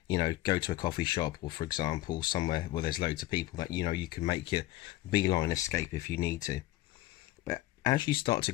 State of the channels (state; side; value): quieter; right; 16.6 dB